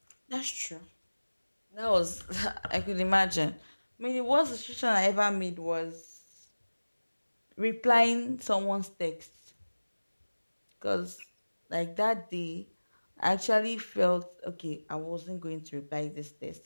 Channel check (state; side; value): inverted; both; correlation -1.00